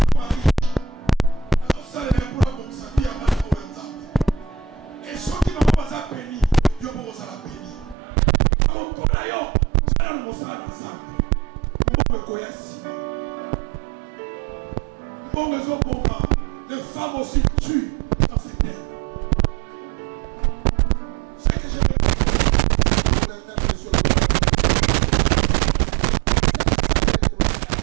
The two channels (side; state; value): left; drops out; at 8.0 s